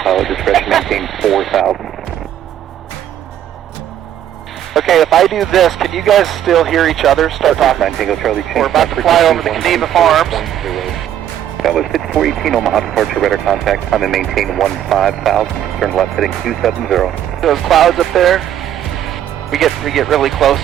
pilot discretion, maintain 4,000. Okay, if I do this, can you guys still hear each other? Start talking. We're about to fly over the Geneva Farms. That was 5418 Omaha departure radar contact. Time and maintain 15,000. Turn left heading 270. Those clouds up there, we get really close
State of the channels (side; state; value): left; quieter; 10.9 dB